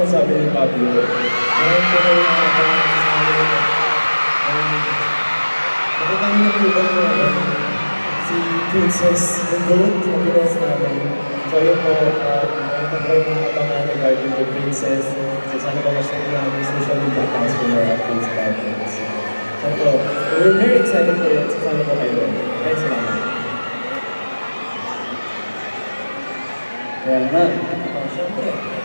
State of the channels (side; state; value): both; inverted; correlation -1.00